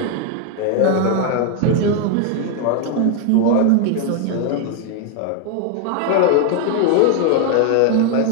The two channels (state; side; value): different; both; correlation 0.01